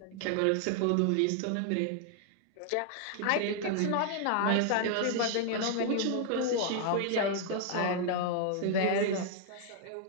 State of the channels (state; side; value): different; both; correlation 0.00